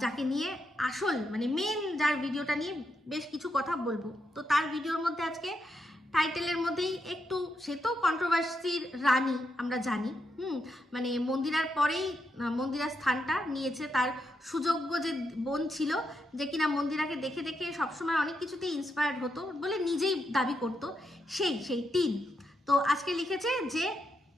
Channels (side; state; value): both; normal; correlation 0.82